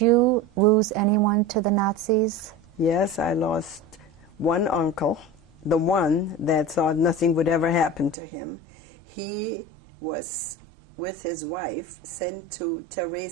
you lose anyone to the Nazis? Yes, I lost one uncle, the one that thought nothing would ever happen to him. He was, with his wife, sent to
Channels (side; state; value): left; drops out; at 8.2 s